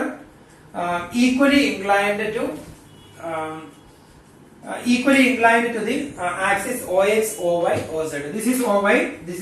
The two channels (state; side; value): identical; both; correlation 1.00